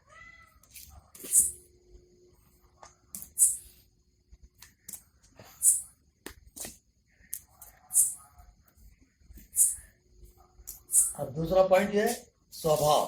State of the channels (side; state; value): both; identical; correlation 1.00